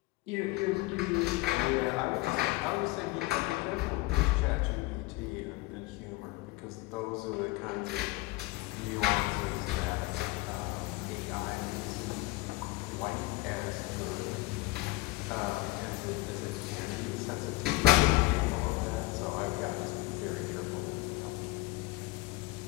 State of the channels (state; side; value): quieter; right; 21.5 dB